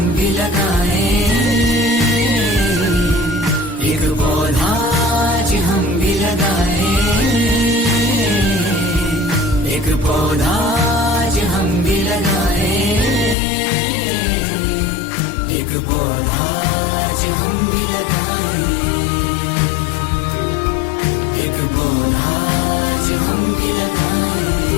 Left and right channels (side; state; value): right; drops out; at 13.4 s